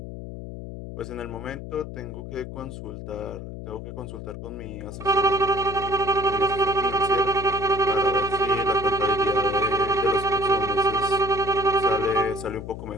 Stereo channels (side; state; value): left; noise; hum, 10 dB below the sound